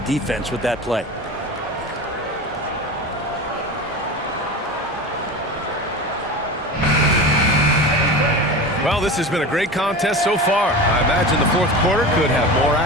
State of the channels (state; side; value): normal; both; correlation 0.30